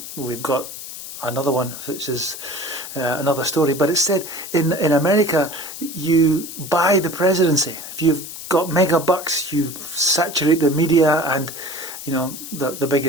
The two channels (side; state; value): left; noise; hiss, 11 dB below the sound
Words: we've got another one, which is another story. But it's said in America, you buy the presidency. If you've got mega bucks, you saturate the media, and the